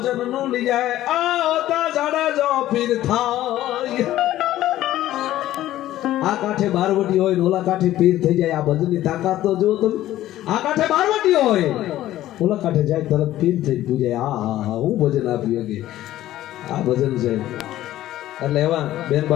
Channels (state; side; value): quieter; right; 14.1 dB